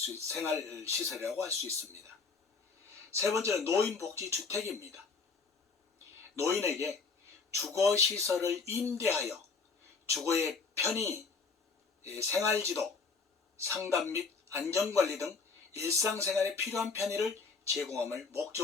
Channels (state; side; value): quieter; right; 4.8 dB